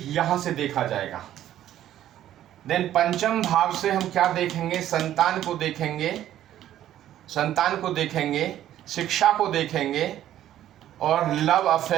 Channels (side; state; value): left; quieter; 12.2 dB